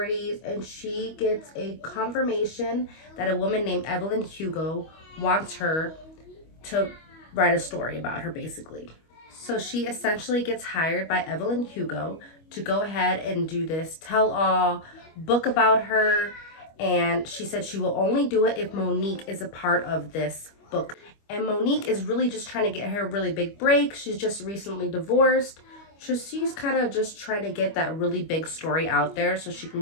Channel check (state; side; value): late; right; 25 ms